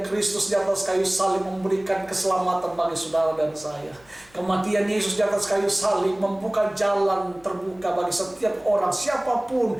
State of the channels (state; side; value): noise; left; hum, 28 dB below the sound